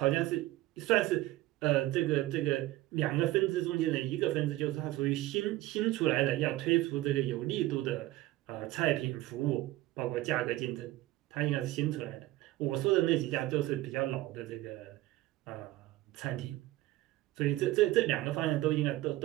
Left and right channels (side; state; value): left; quieter; 16.9 dB